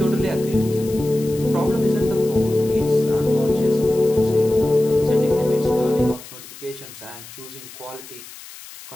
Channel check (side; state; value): left; noise; hiss, 17 dB below the sound